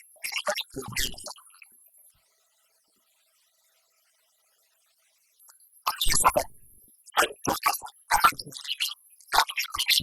بڑے بڑے پروگرام شروع ہوئے۔ 15 صفر سن 1405 ہجری میں خادم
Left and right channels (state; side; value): identical; both; correlation 1.00